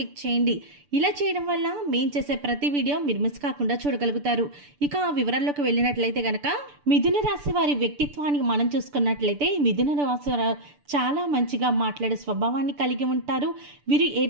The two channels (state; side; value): late; left; 6.9 ms